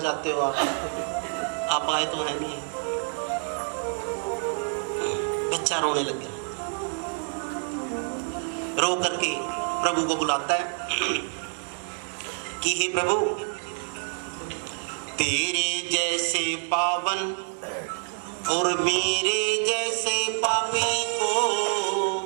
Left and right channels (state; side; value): silent; left; 60 dB below the other